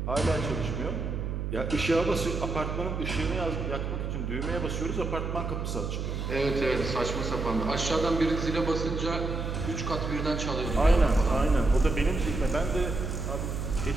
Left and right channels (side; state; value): right; noise; hum, 3 dB below the sound